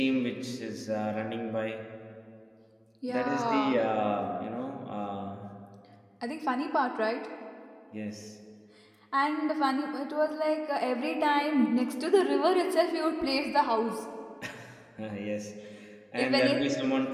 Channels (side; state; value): both; identical; correlation 1.00